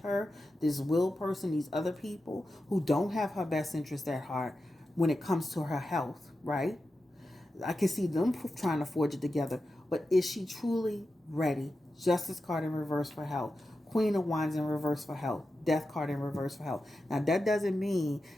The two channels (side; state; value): both; normal; correlation 0.91